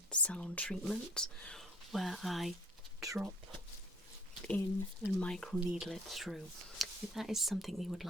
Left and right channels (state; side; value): normal; both; correlation 0.53